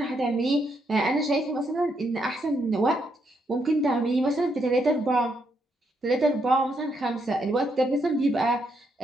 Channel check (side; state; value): both; normal; correlation 0.77